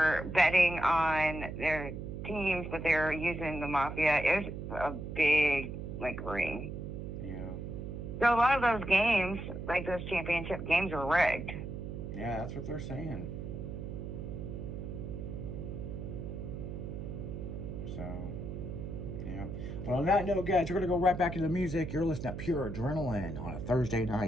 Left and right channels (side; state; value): right; noise; hum, 7 dB below the sound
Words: betting on their teams, but they were using the mafia. It was a big, like, ring. Yeah. So a lot of those games, like those championship games, were rigged. Yeah, that's what they're saying. So... yeah. Well, on that note, guys, we're going to go right back into the music. You're listening to Pure Adrenaline on a Thursday